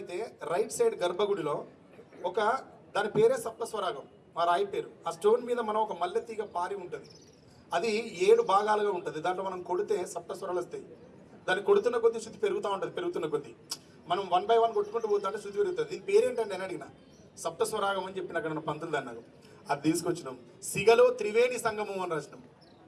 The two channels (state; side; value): identical; both; correlation 1.00